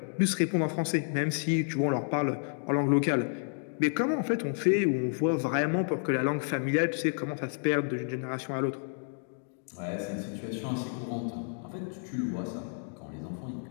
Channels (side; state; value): right; silent; 57 dB below the other